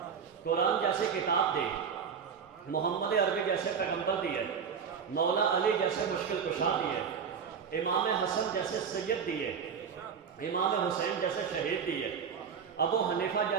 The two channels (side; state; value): left; quieter; 6.8 dB